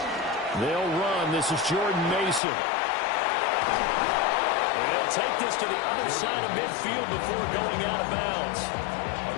They'll run. This is Jordan Mason. And he'll take this to the other side of midfield before going out of bounds.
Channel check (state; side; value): drops out; right; at 2.4 s